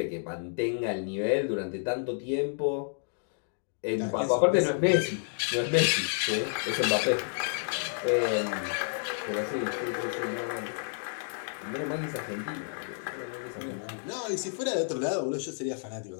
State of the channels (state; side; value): silent; right; digital silence